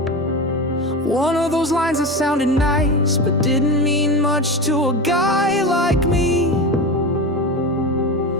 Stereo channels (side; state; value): both; normal; correlation 0.23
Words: One of those lines that sounded nice but didn't mean much to a guy like me.